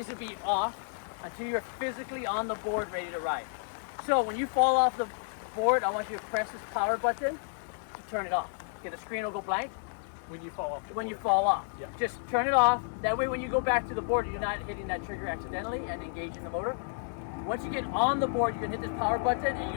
to be off until you're physically on the board ready to ride. So when you fall off the board, I want you to press this power button to turn it off. Okay, the screen will go blank. When you fall off the board. You fall off. Yeah. Just turn it off. That way when you go back to the board, you're not hitting that trigger accidentally and engaging the motor. Once you get on the board, you can hit this power button and you're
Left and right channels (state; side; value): silent; right; digital silence